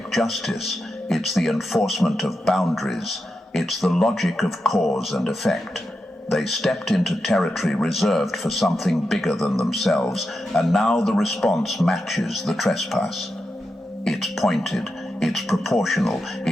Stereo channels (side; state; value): both; normal; correlation 0.88